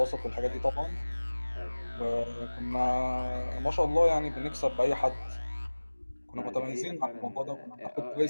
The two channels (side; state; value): both; inverted; correlation -1.00